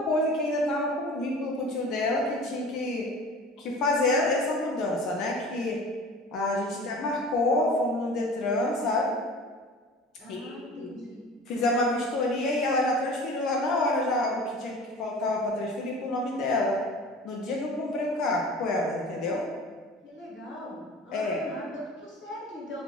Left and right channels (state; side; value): normal; both; correlation 0.40